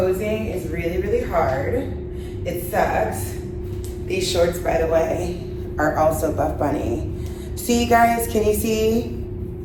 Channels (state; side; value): identical; both; correlation 1.00